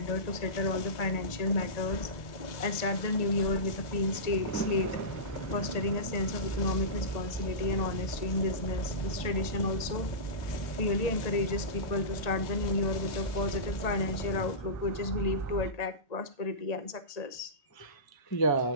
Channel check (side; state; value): right; late; 1.8 ms